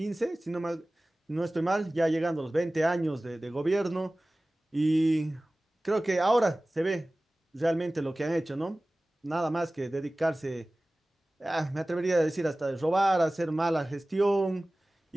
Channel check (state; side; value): normal; both; correlation 0.98